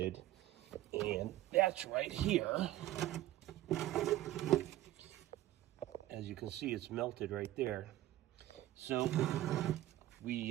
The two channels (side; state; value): left; quieter; 14.6 dB